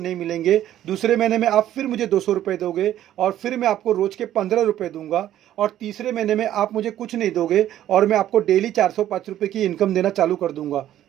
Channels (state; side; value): quieter; left; 12.3 dB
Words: मिलेंगे। दूसरे महीने में आप फिर मुझे 200 रुपये दोगे, और फिर मैं आपको रोज़ के 15 रुपये दूंगा। और तीसरे महीने में आप मुझे कुछ नहीं दोगे और मैं आपको डेली 405 रुपये की इनकम देना चालू कर दूंगा।